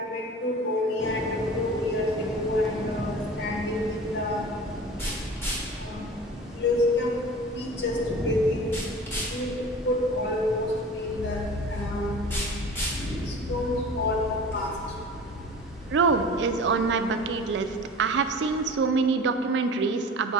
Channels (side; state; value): both; normal; correlation 0.39